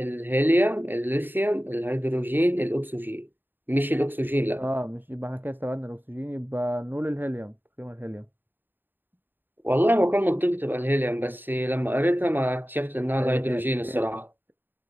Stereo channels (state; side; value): late; left; 0.094 ms